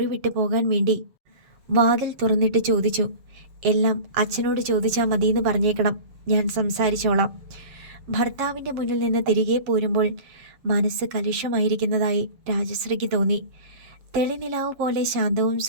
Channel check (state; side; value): late; left; 7.4 ms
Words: വിട്ടു പോകാൻ വേണ്ടി വാതിൽ തുറന്നിട്ട് ചോദിച്ചു. എല്ലാം അച്ഛനോട് ചോദിച്ചാൽ മതിയെന്ന് പറഞ്ഞേക്കണം, ഞാൻ സംസാരിച്ചോളാം. ഭർത്താവിൻ്റെ മുന്നിൽ നിന്ന് തിരികെ പോരുമ്പോൾ മനസ്സ് കലുഷമായിരിക്കുന്നതായി രാജശ്രീക്ക് തോന്നി. തെളിനിലാവ് പോലെ ശാന്തവും